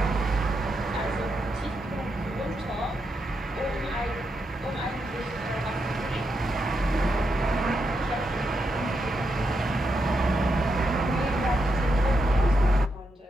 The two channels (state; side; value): normal; both; correlation 0.83